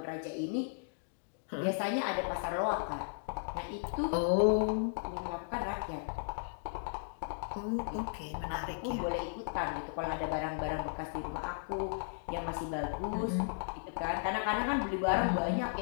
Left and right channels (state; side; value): silent; right; digital silence